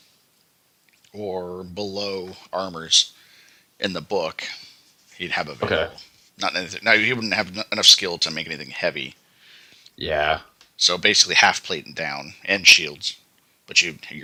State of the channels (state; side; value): identical; both; correlation 1.00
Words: or below armors in the book, he'd have available. Okay. Not anything. Now he wouldn't have enough skill to make anything heavy. Yeah. So basically, half plate and down, and shields. But